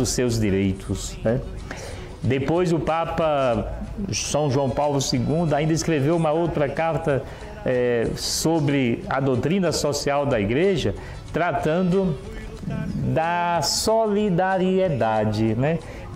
seus direitos, né? Depois o Papa São João Paulo II ainda escreveu uma outra carta sobre a doutrina social da igreja, tratando da solidariedade, né?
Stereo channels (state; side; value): identical; both; correlation 1.00